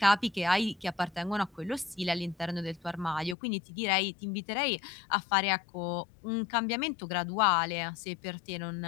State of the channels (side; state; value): right; drops out; at 3.4 s